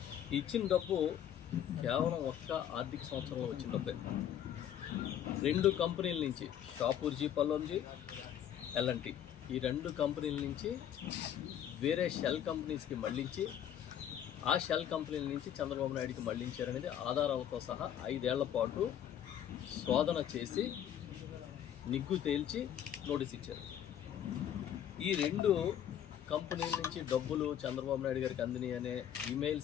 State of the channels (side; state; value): right; quieter; 10.0 dB